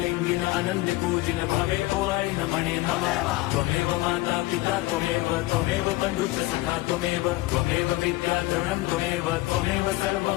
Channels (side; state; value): right; quieter; 19.3 dB